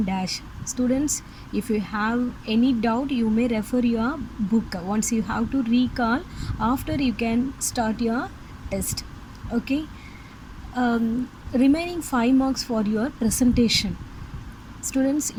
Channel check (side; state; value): both; identical; correlation 1.00